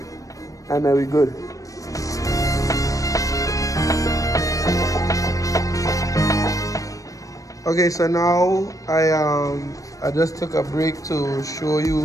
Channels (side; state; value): right; late; 0.16 ms